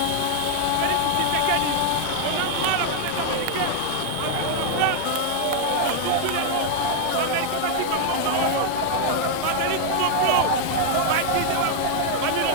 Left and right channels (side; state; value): both; different; correlation 0.00